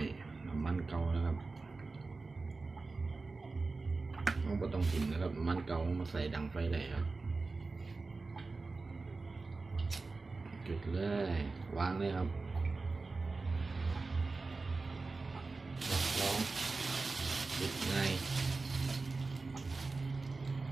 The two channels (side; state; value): left; quieter; 3.8 dB